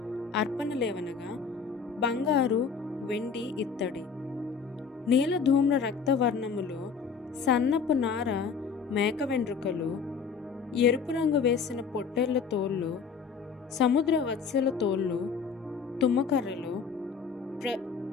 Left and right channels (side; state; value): right; quieter; 5.9 dB